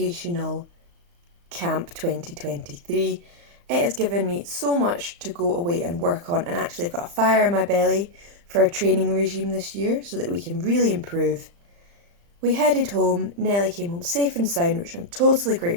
Camp 2023. It has given me so much to go away and work on, and actually I've got a fire in my belly for a training regime this year so that we can really improve. We headed home, Nellie came home safe and sound, which I'm totally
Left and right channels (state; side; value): late; left; 35 ms